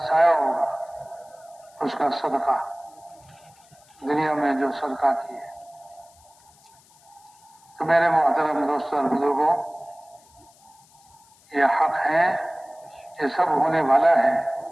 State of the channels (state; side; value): noise; left; hiss, 29 dB below the sound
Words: ہوگا، اس کا صدقہ، دنیا میں جو صدقہ کیے۔ تو میرے محترم دوستوں اور بزرگوں، یہ حق ہے، یہ سب ہونے والا ہے۔